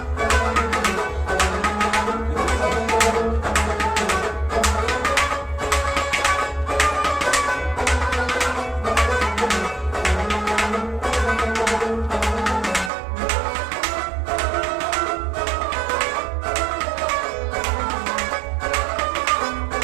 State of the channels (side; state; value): left; drops out; at 12.9 s